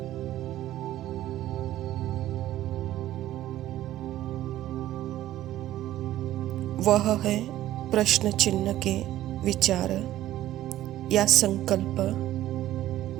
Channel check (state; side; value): quieter; left; 13.9 dB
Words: वह है प्रश्न चिन्ह के विचार या संकल्प,